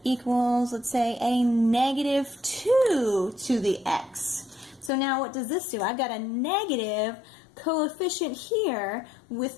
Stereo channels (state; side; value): drops out; right; at 4.9 s